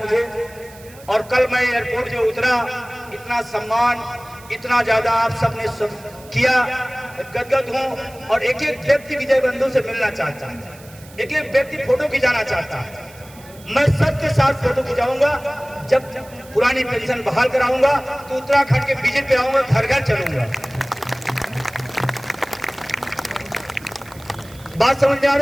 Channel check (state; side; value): noise; right; hiss, 22 dB below the sound